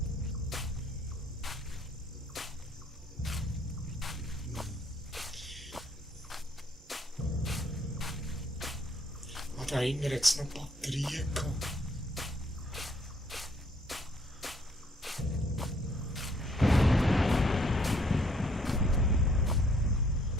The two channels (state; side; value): normal; both; correlation 0.66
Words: Und da hinten hat es noch Batterien gehabt.